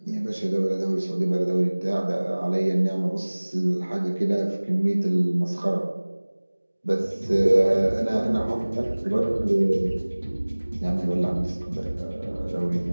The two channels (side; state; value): both; inverted; correlation -1.00